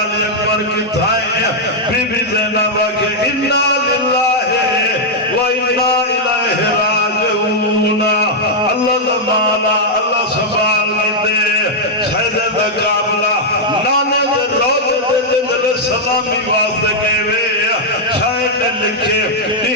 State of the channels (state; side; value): normal; both; correlation -0.04